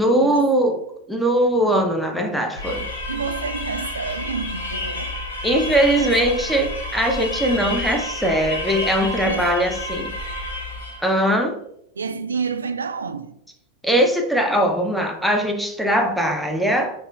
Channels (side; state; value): both; normal; correlation 0.34